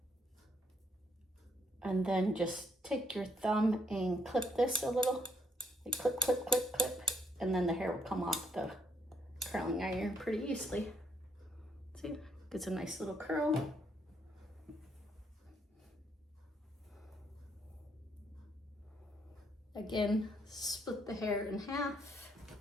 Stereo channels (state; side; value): normal; both; correlation 0.73